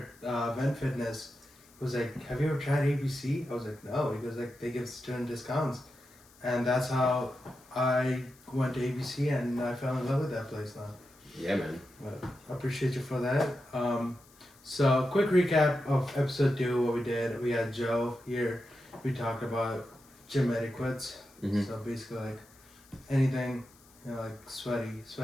Vent Fitness, was like, have you ever tried ABC? I was like, no. He goes like, they give student discounts. And that's how I went to ABC and I fell in love with that place now. Yeah, man. But I appreciate you for that. So quick recap of episode 2, what we did. We had Joe here. We talked about gym etiquettes. Mm-hmm. So basically like anything, like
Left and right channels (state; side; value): noise; left; hiss, 27 dB below the sound